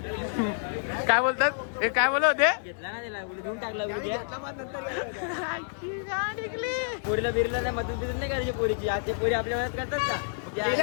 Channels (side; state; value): right; silent; digital silence